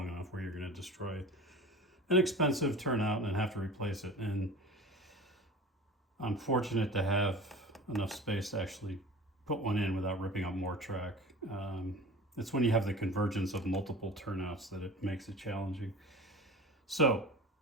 enough where you're going to destroy an expensive turnout and have to replace it. And I'm fortunate to have enough space to actually put one in without ripping up more track. It's when you have the convergence of multiple turnouts that it makes it challenging. So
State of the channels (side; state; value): both; normal; correlation 0.37